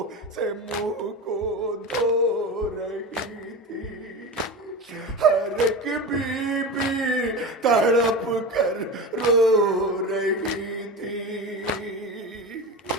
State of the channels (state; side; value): normal; both; correlation 0.26